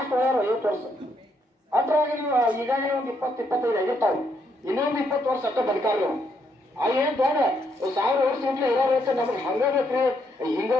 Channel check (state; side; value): normal; both; correlation 0.75